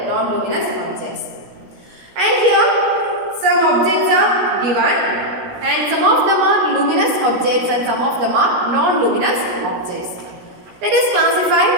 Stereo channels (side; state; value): left; late; 17 ms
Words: non-luminous objects. And here some objects are given, and some of them are luminous objects and some of them are non-luminous objects. Let us